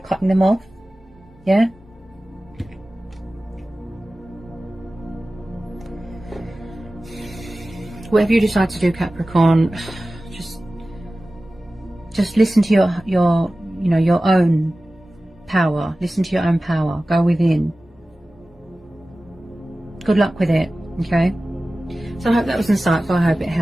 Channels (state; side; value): normal; both; correlation 0.96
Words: them off. Yeah? Whatever you decide to do, Capricorn, just listen to your you know, your own power. Listen to your own power. Go within. Good luck with it, okay? So I hope that was insightful. I hope it